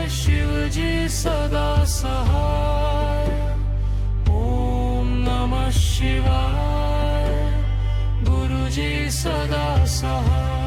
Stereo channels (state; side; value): identical; both; correlation 1.00